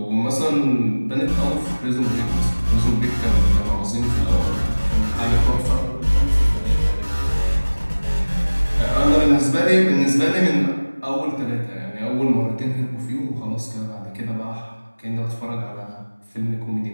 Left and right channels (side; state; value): both; inverted; correlation -1.00